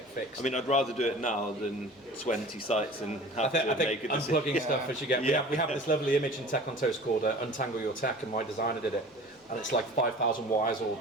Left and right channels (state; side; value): normal; both; correlation 0.42